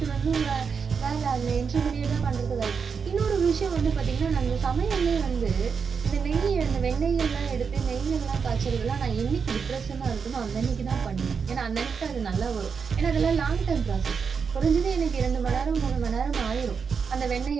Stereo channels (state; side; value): quieter; left; 5.9 dB